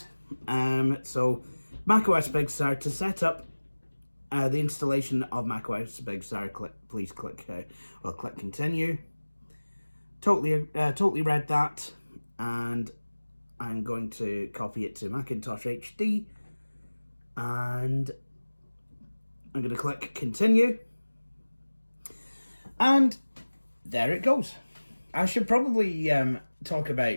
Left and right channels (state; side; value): inverted; both; correlation -1.00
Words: So, macOS Big Sur, to set up the installation of macOS Big Sur, please click continue. Totally read that, and I'm going to copy it to Macintosh HD, and I'm going to click continue, and there it goes. I should probably talk